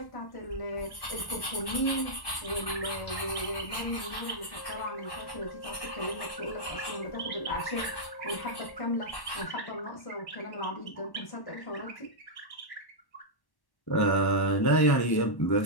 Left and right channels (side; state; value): right; late; 1.1 ms